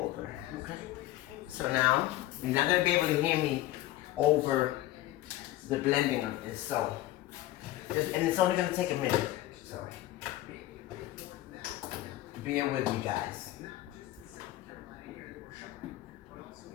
okay? So now, you're not gonna be able to hear me over the blending of this, so. And it's only going to take a minute, so bear with me, guys.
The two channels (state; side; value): quieter; right; 15.7 dB